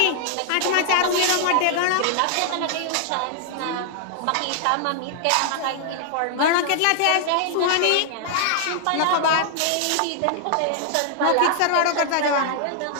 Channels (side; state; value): both; different; correlation -0.01